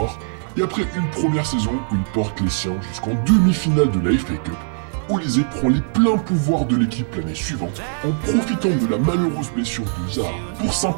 Et après une première saison où il porte les siens jusqu'en demi-finale de la FA Cup, Olise prend les pleins pouvoirs de l'équipe l'année suivante en profitant de la malheureuse blessure de Zaha pour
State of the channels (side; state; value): left; silent; digital silence